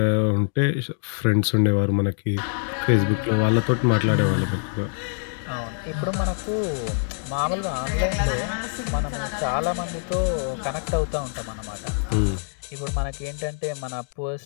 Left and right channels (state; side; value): silent; right; 62 dB below the other